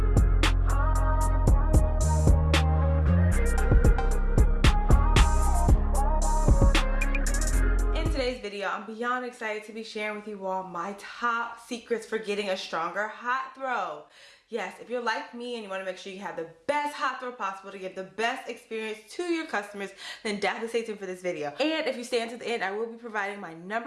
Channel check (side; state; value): both; identical; correlation 1.00